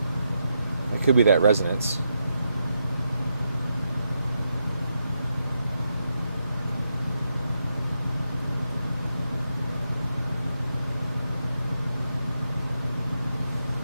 It could be that resonance.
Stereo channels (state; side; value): inverted; both; correlation -0.84